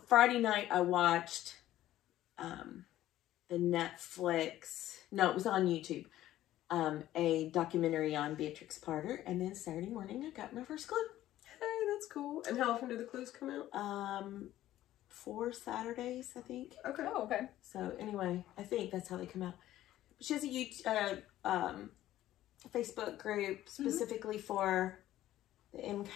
Friday night I watched the Netflix, no, it was on YouTube, a documentary on Beatrix Potter, and then Saturday morning I got my first clue. Hey, that's cool. And how often do the clues come out? 4 Saturdays, I think. Okay. Oh, okay. So anyway, I think that's how they come out. She has a Facebook group specifically for the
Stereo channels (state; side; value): quieter; right; 13.9 dB